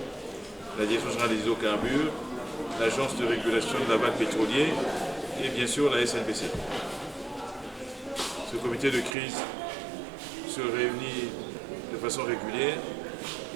la Direction générale des hydrocarbures, l'Agence de régulation de l'aval pétrolier et bien sûr la SNPC. Ce comité de crise se réunit de façon régulière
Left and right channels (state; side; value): drops out; left; at 9.2 s